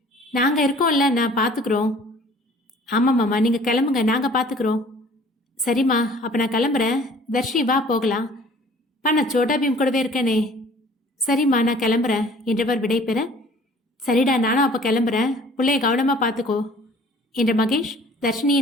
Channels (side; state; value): both; normal; correlation 0.52